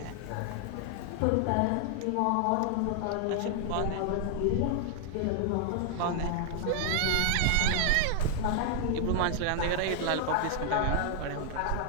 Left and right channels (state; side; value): different; both; correlation 0.00